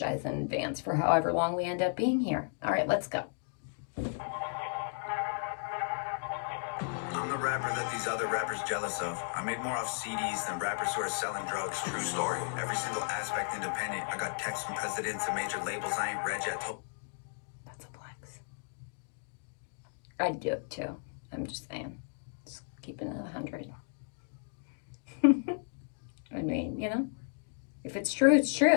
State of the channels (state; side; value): silent; right; digital silence